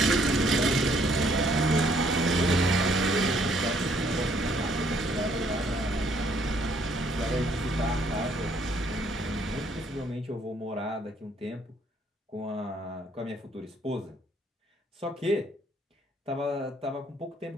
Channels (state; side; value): normal; both; correlation 0.66